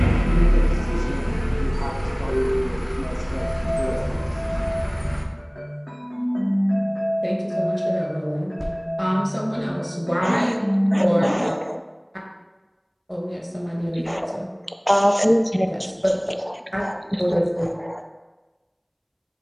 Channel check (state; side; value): identical; both; correlation 1.00